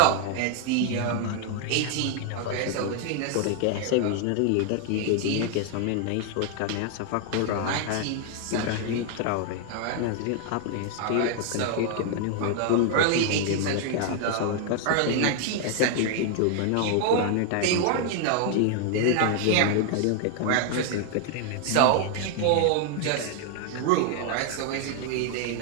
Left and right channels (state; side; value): different; both; correlation 0.00